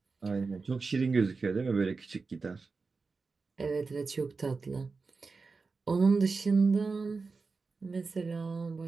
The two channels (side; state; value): left; quieter; 4.3 dB